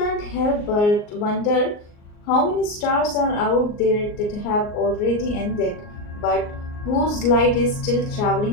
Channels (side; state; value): right; late; 38 ms